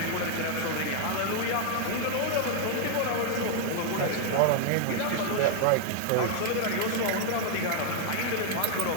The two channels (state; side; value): different; both; correlation 0.00